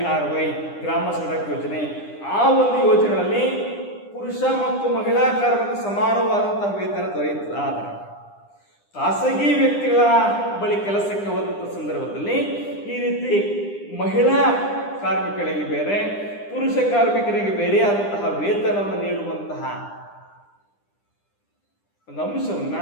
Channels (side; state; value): right; late; 9.9 ms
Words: ಗ್ರಾಮ ಸಡಕ್ ಯೋಜನೆ, ಆ ಒಂದು ಯೋಜನೆಗಳಲ್ಲಿ ಪುರುಷ ಮತ್ತು ಮಹಿಳಾ ಕಾರ್ಮಿಕ ಸಮಾನವಾದಂತಹ ವೇತನ ದೊರೆಯುತ್ತದೆ. ಆದರೆ ಖಾಸಗಿ ವ್ಯಕ್ತಿಗಳ ಬಳಿ ಕೆಲಸಕ್ಕೆ ಹೋದಂಥ ಸಂದರ್ಭದಲ್ಲಿ ಈ ರೀತಿ ಮಹಿಳಾ ಕಾರ್ಮಿಕರಿಗೆ ಬೇರೆ, ಪುರುಷ ಕಾರ್ಮಿಕರಿಗೆ ಬೇರೆಯಾದಂತಹ ವೇತನವನ್ನು ನೀಡುವಂತಹ ಒಂದು ಅಂಶವನ್ನ